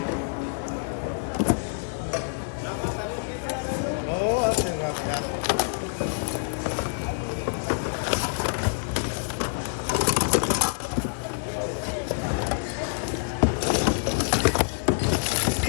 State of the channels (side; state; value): right; silent; digital silence